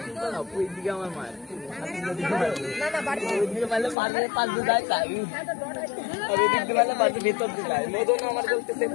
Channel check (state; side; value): drops out; right; at 4.0 s